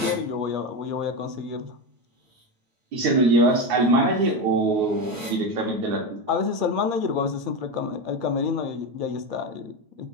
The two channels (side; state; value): left; late; 9.4 ms